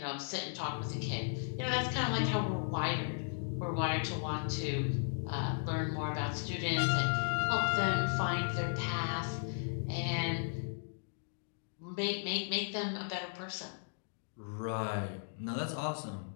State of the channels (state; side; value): silent; right; digital silence